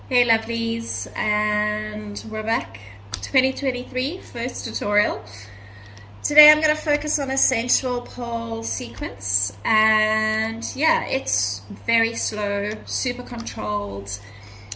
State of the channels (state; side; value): identical; both; correlation 1.00